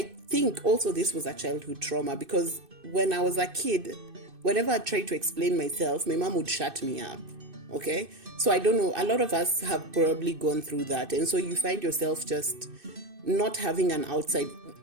think also this was a childhood trauma because when I was a kid, whenever I tried to explain myself, my mom would shut me up. Okay? So I don't know. A lot of us have probably gone through that. And so you find yourself just not having an outside.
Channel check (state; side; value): late; left; 2.6 ms